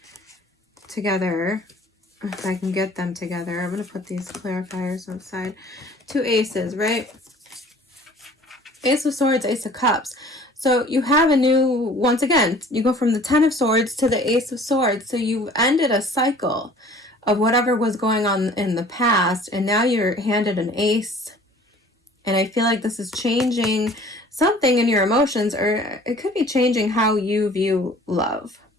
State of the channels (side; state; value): both; normal; correlation 0.50